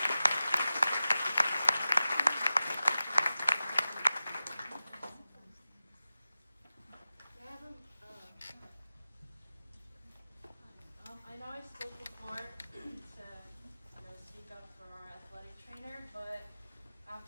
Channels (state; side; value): inverted; both; correlation -0.96